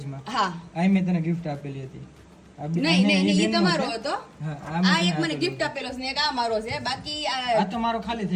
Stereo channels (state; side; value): identical; both; correlation 1.00